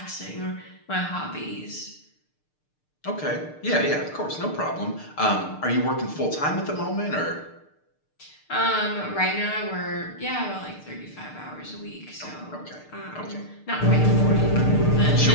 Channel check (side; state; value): right; late; 6.6 ms